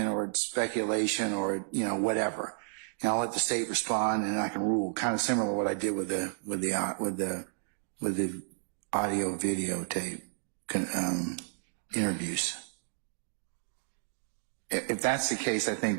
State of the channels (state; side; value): silent; left; digital silence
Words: or it's speculation, or, whatever. And I'll let the state respond, and I can rule, kind of similar to what I did with the audio videotape interviews. If that's the case, I think